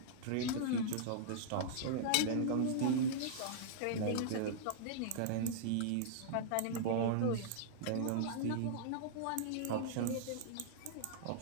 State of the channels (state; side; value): different; both; correlation -0.02